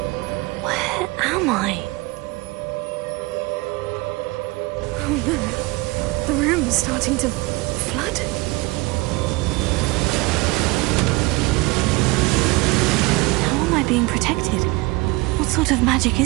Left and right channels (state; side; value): quieter; left; 23.4 dB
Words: Where am I? Oh no. The room is starting to flood. How am I being protected? What sort of magic